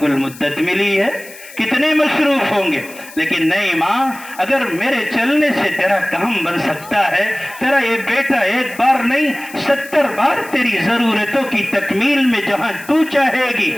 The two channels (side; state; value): left; noise; hiss, 18 dB below the sound